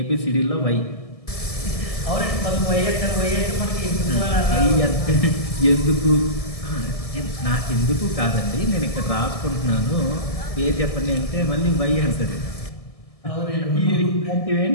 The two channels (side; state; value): right; late; 1.7 ms